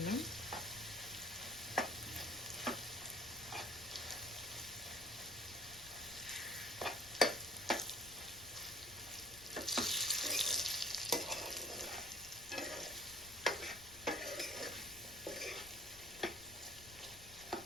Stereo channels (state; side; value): noise; left; rumble, 18 dB below the sound